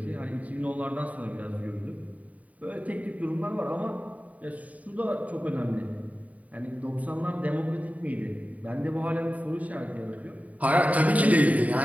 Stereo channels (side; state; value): left; late; 0.070 ms